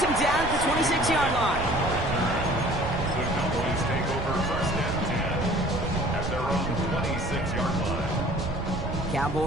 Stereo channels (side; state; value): right; noise; rumble, 5 dB below the sound